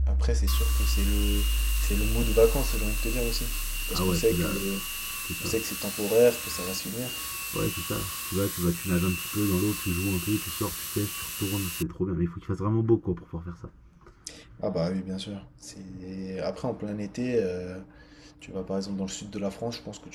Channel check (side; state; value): both; identical; correlation 1.00